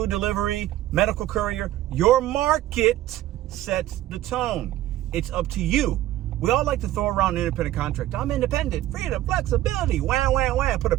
delivery, medical courier, your market sets the tone. It's up to you. We all like to throw around an independent contract. I'm independent, freedom, flexibility, wham, wham, wham. Put a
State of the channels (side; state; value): left; quieter; 14.2 dB